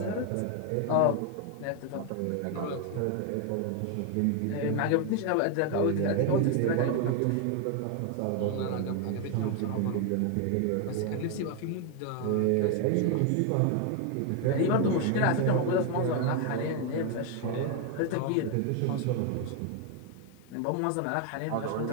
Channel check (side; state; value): both; different; correlation 0.01